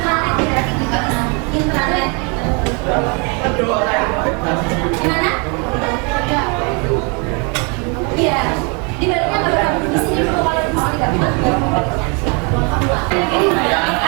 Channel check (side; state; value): left; quieter; 33.2 dB